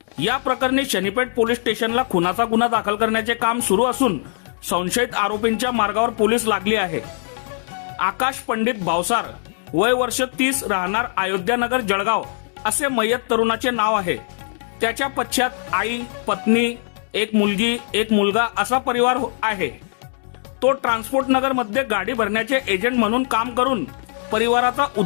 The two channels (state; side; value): silent; right; digital silence